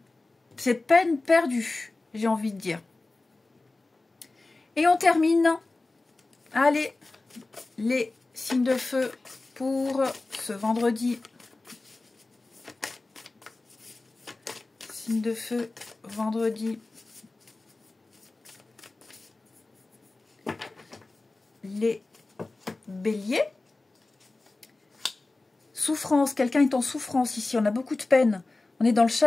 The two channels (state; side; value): quieter; right; 3.2 dB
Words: C'est peine perdue, j'ai envie de dire. Et on termine. Allez, les signes de feu pour ce vendredi. Signes de feu, vendredi. Les béliers. Souffrance, quelqu'un est en souffrance ici, on a beaucoup de peine, on est dans le